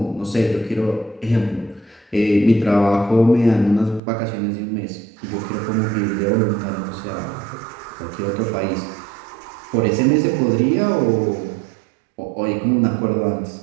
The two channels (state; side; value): drops out; left; at 4.0 s